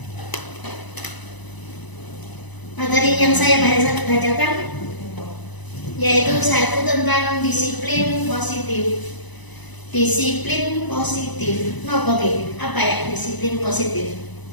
Materi yang saya bacakan yaitu satu tentang disiplin positif. Disiplin positif. Oke, apa ya disiplin positif?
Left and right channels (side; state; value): right; late; 1.0 ms